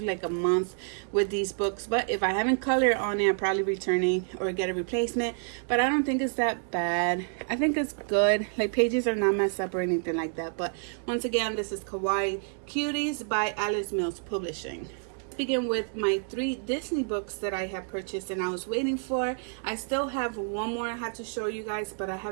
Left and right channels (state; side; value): silent; left; 59 dB below the other